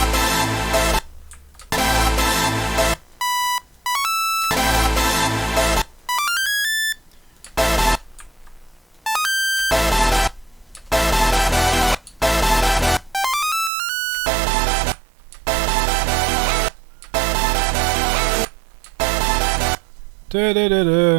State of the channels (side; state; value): left; drops out; at 13.7 s